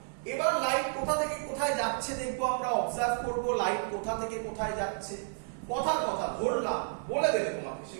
এবার লাইট কোথা থেকে কোথায় যাচ্ছে দেখবো আমরা, অবজার্ভ করব লাইট কোথা থেকে কোথায় যাচ্ছে। কথার কথা ধরলাম, বলে দেবে তোমাকে,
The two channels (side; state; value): left; silent; digital silence